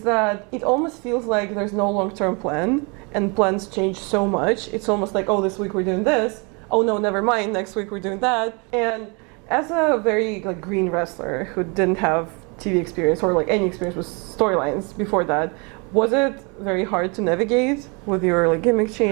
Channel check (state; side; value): quieter; left; 31.8 dB